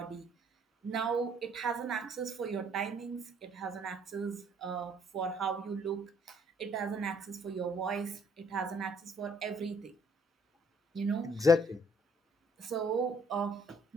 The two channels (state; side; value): normal; both; correlation 0.63